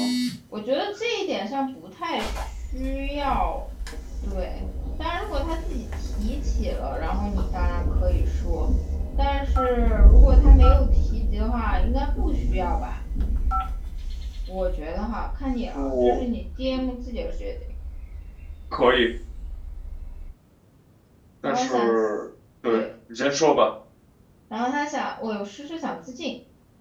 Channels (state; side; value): identical; both; correlation 1.00